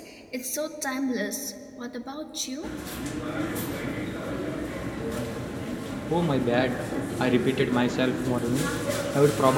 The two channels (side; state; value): both; identical; correlation 1.00